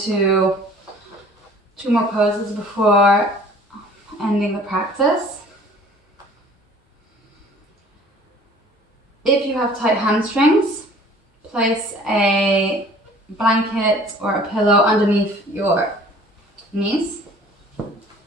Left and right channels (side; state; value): both; normal; correlation 0.51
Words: 2 more poses before ending the practice. If you have tight hamstrings, place a blanket or a pillow underneath your knees.